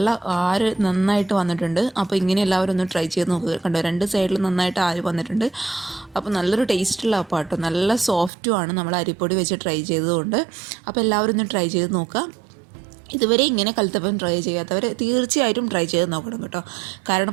ആര് നന്നായിട്ട് വന്നിട്ടുണ്ട്. അപ്പോൾ ഇങ്ങനെ എല്ലാവരും ഒന്ന് ട്രൈ ചെയ്ത് നോക്കുക. കണ്ടോ, രണ്ട് സൈഡിലും നന്നായിട്ട് ആര് വന്നിട്ടുണ്ട്. അപ്പോൾ നല്ലൊരു ടേസ്റ്റുള്ള അപ്പം കേട്ടോ, നല്ല സോഫ്റ്റുമാണ് നമ്മൾ അരിപ്പൊടി വെച്ച് ട്രൈ ചെയ്തതുകൊണ്ട്. അപ്പോൾ എല്ലാവരും ഒന്ന് ട്രൈ ചെയ്ത് നോക്കുക. ഇതുവരെ ഇങ്ങനെ കലത്തപ്പം ട്രൈ ചെയ്യാത്തവർ തീർച്ചയായിട്ടും ട്രൈ ചെയ്ത് നോക്കണം കേട്ടോ.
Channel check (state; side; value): drops out; left; at 8.3 s